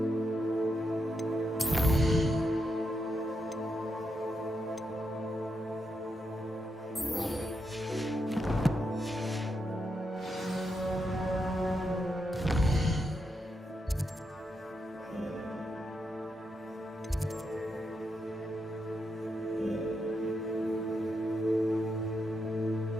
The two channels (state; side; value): normal; both; correlation 0.83